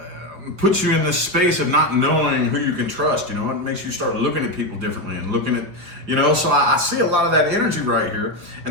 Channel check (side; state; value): left; late; 4.7 ms